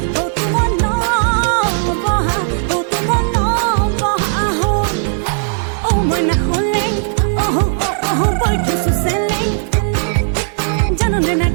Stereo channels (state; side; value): silent; left; 69 dB below the other